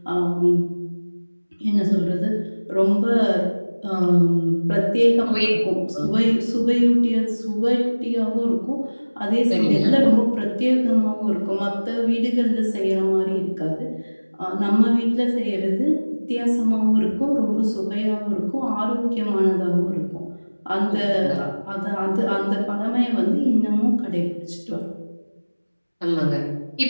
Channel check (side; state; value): both; inverted; correlation -1.00